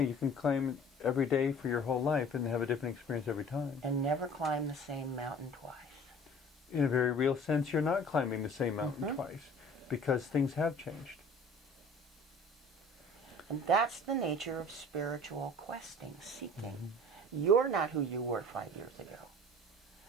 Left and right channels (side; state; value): both; normal; correlation 0.47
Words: can climb every day for your whole life and have a different experience every time. And never climb the same mountain twice. In a very real sense, you're not climbing the same mountain twice, because things have changed. And that's the nature of spiritual questing, seeking. You're not who you were 5 years ago.